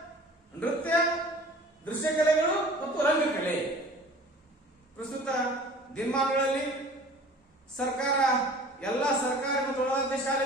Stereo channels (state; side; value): normal; both; correlation 0.45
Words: ನೃತ್ಯ, ದೃಶ್ಯ ಕಲೆಗಳು ಮತ್ತು ರಂಗಕಲೆ. ಪ್ರಸ್ತುತ ದಿನಮಾನಗಳಲ್ಲಿ ಸರ್ಕಾರ ಎಲ್ಲ ಸರ್ಕಾರಿ ಮತ್ತು ಒಳಾಡಳಿತ